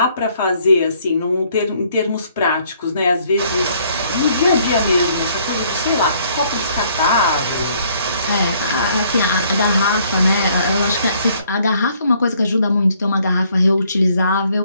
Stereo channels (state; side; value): inverted; both; correlation -0.64